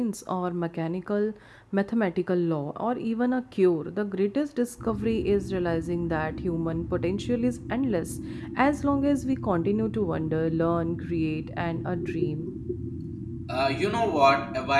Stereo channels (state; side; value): identical; both; correlation 1.00